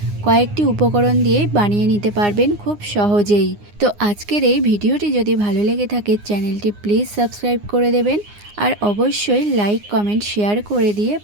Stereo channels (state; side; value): late; left; 9.7 ms